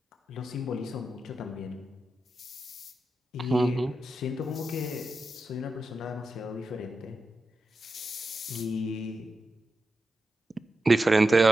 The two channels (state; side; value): normal; both; correlation 0.90